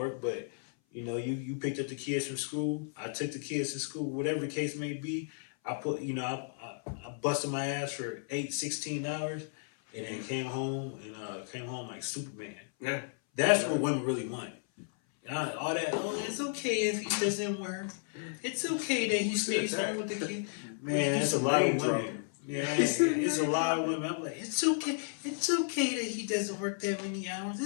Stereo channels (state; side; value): silent; right; 56 dB below the other